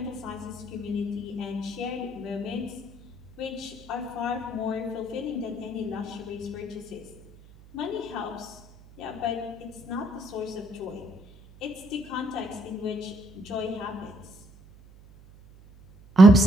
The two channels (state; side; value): noise; right; hum, 22 dB below the sound